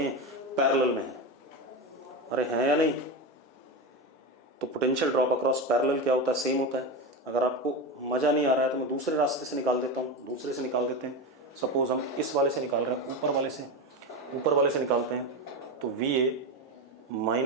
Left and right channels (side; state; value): both; normal; correlation 0.18